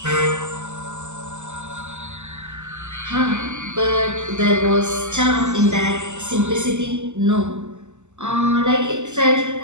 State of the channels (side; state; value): left; late; 0.83 ms